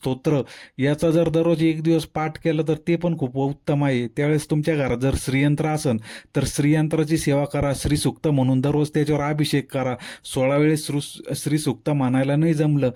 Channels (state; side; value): identical; both; correlation 1.00